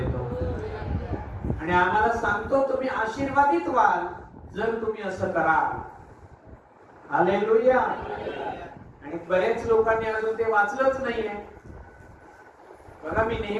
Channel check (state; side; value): identical; both; correlation 1.00